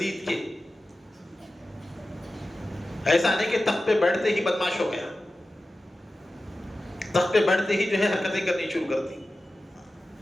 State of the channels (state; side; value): normal; both; correlation 0.94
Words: کے، ایسا نہیں کہ تخت پہ بیٹھتے ہی بدماش ہو گیا، تخت پہ بیٹھتے ہی جو ہے حرکتیں کرنی شروع کر دی۔